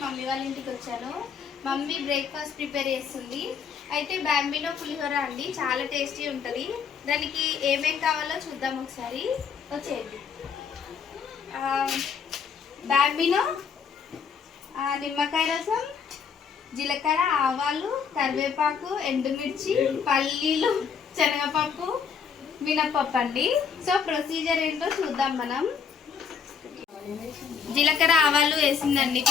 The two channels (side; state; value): right; quieter; 6.6 dB